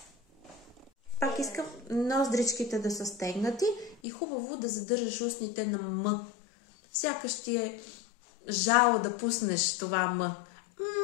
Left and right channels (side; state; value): right; drops out; at 4.0 s